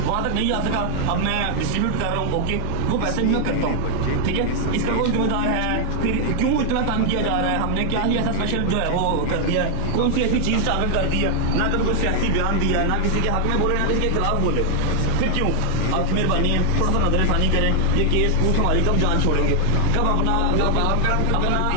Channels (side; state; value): both; different; correlation 0.00